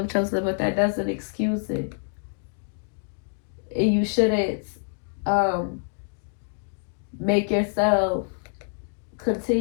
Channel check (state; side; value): silent; right; digital silence